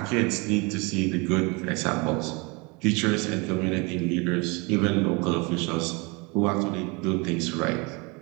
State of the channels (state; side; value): quieter; left; 28.4 dB